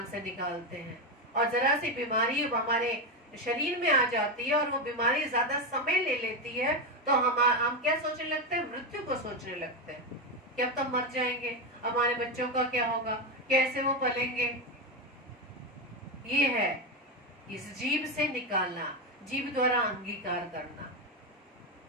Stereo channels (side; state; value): both; normal; correlation 0.11